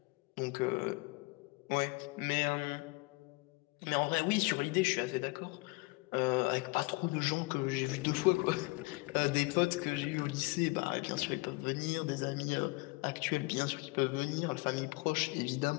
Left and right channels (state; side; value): quieter; right; 26.0 dB